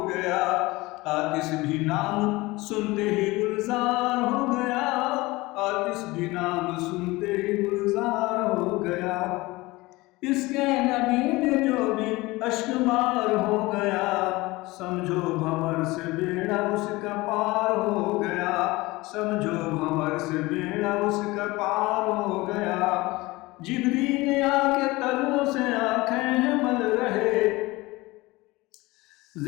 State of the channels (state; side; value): quieter; right; 21.2 dB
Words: गया, आतिश भी नाम सुनते ही गुलजार हो गया, आतिश भी नाम सुनते ही गुलजार हो गया, इश्क़े नबी में जो भी अश्क बार हो गया, समझो भंवर से बेड़ा उसका पार हो गया, समझो भंवर से बेड़ा उसका पार हो गया, जिब्रील आके तलवों से आंखें मल रहे,